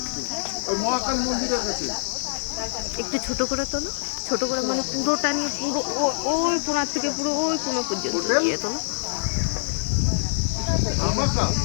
ওই মহাকাল মন্দিরের কাছে একটু ছোট করে তোলো ছোট করে মানে পুরোটা নিয়ে পুরো ওই কোনার থেকে পুরো ওই কোনা পর্যন্ত দিয়ে তোলো রামাটা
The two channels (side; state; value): right; silent; digital silence